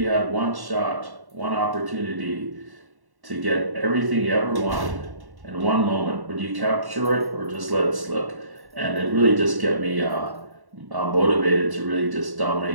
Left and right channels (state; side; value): late; left; 1.1 ms